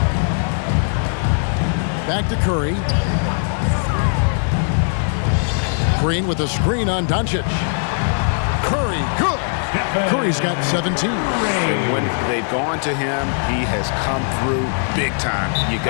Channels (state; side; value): silent; right; 65 dB below the other